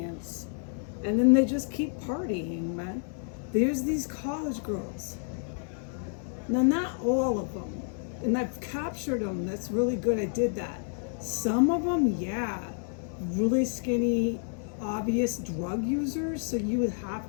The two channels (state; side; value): silent; right; 58 dB below the other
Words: And then they just keep partying, man. There's these college girls. Now, not all of them, and I've captured them. That's really good. I did that. Some of them, yeah, really skinny, obvious drug users. So you would